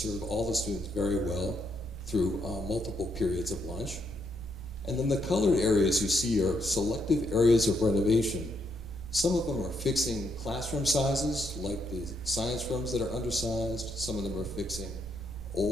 all the students very well through multiple periods of lunch. And then the colored areas you see are selective areas of renovation. Some of them are fixing classroom sizes, like the science rooms that are undersized. Some of them are fixing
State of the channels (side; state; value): both; normal; correlation 0.76